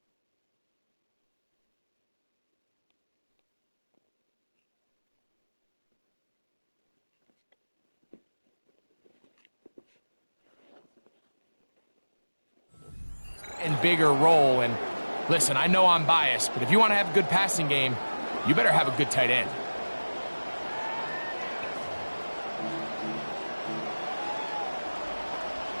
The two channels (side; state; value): both; inverted; correlation -1.00